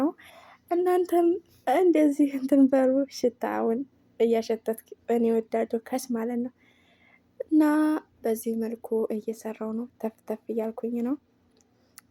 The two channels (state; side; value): identical; both; correlation 1.00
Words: እናንተም እንደዚህ እንትን በሩ ሽታውን እያሸተት እኔ እወዳለሁ ከስ ማለት ነው። እና በዚህ መልኩ እየሰራው ነው፣ ተፍ ተፍ እያልኩኝ ነው።